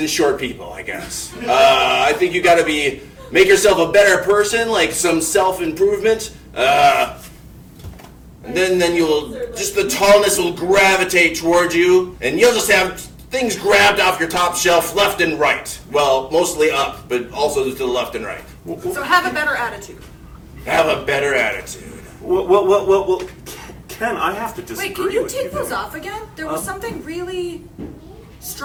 short people, I guess. I think you got to make yourself a better person, like some self-improvement. And then you'll, just the tallness will gravitate towards you, and you'll just have things grabbed off your top shelf left and right. Well, mostly up, but also to the left and right. So have a better attitude. Have a better attitude. Well, Ken, I have to disagree Wait, can you with take those off again? There was something really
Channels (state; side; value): identical; both; correlation 1.00